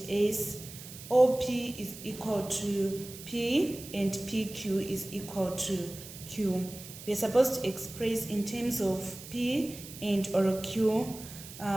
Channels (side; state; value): right; noise; hiss, 14 dB below the sound